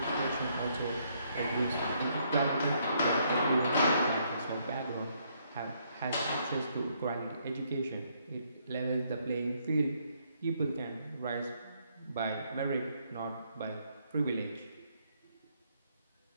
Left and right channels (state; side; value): inverted; both; correlation -0.71